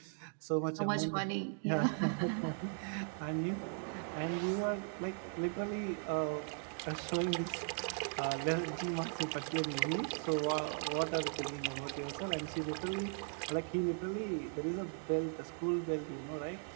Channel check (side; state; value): left; silent; 52 dB below the other